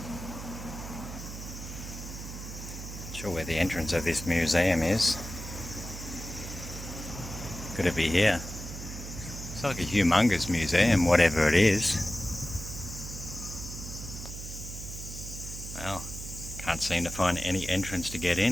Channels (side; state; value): right; noise; hum, 9 dB below the sound